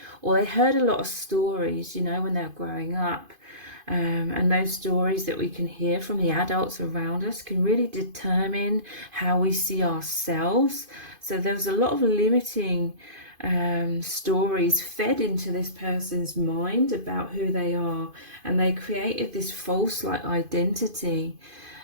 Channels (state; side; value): late; left; 2.5 ms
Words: or they heard a lot of stories, you know, when they were growing up. And those stories that we can hear from the adults around us can really determine how we see ourselves. So there's a lot of limiting stories fed into this person's mind about who they are, and they created this false like identity